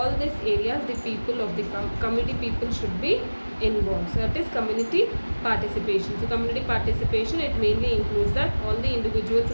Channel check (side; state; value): both; inverted; correlation -1.00